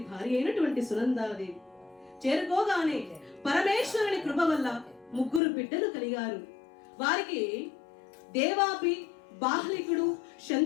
భార్య అయినటువంటి సునందాదేవి. చేరుకోగానే పరమేశ్వరుని కృప వల్ల 3 బిడ్డలు కలిగారు. వారికి దేవాపి, బాహ్లికుడు,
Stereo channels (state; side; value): drops out; right; at 5.4 s